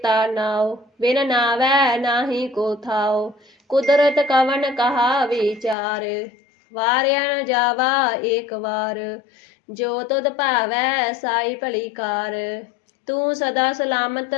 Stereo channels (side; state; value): right; drops out; at 5.8 s